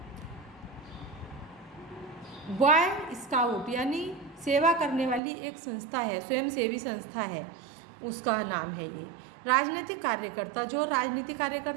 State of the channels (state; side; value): drops out; left; at 5.2 s